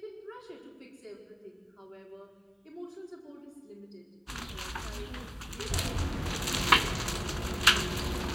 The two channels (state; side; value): identical; both; correlation 1.00